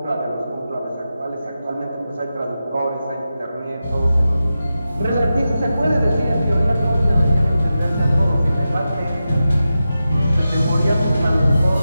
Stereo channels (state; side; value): inverted; both; correlation -0.91